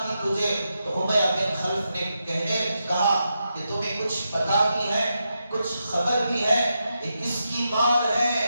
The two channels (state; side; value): inverted; both; correlation -0.86